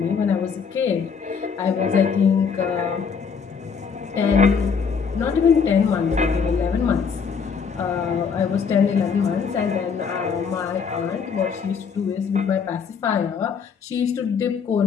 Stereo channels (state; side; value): quieter; right; 6.1 dB